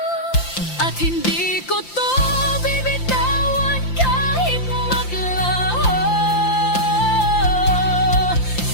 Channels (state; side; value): late; right; 5.8 ms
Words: At hindi ko to bibitawan kahit maglaho.